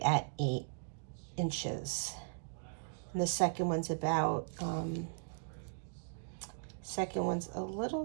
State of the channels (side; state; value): left; silent; digital silence